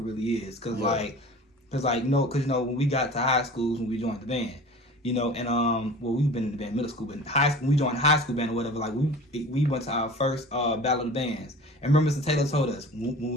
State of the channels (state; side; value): normal; both; correlation 0.40